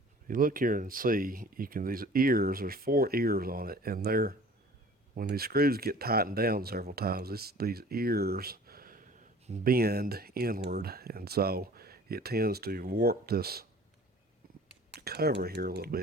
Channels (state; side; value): normal; both; correlation 0.47